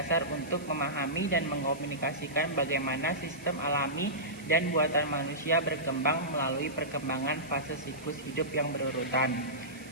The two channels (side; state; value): right; noise; hiss, 20 dB below the sound